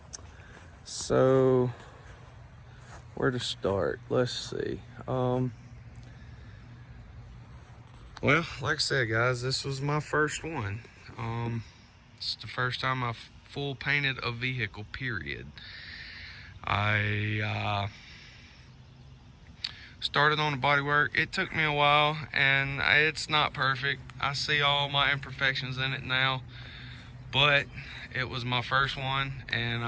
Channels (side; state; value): both; identical; correlation 1.00